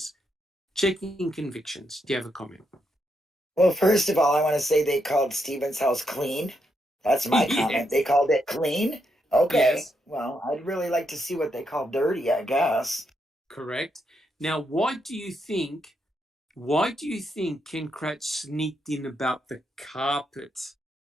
Checking convictions. Do you have a comment? Well, first of all, I want to say they called Stephen's house clean. That's my comment. They called it clean? Okay. Yes. Well, I'd really like to see what they call dirty, I guess. Correct. Now, why do you think Ken Kratz sneaked in about the carpets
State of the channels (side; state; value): both; normal; correlation 0.80